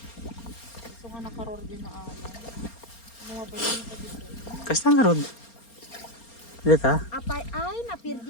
Gusto nga nakaror din na ano. Mga bayan pa dito. Kasta nga garod. Dito. Apay ay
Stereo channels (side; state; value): right; late; 4.3 ms